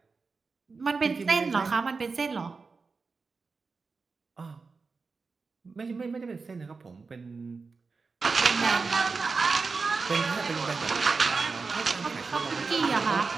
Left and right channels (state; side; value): quieter; left; 4.5 dB